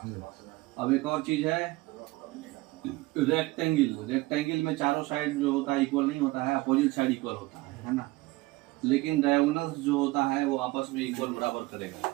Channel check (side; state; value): left; quieter; 21.1 dB